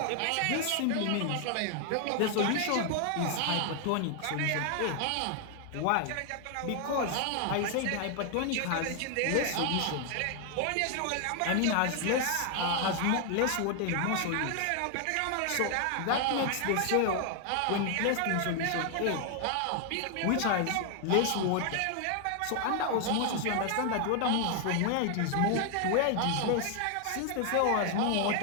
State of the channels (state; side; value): different; both; correlation 0.00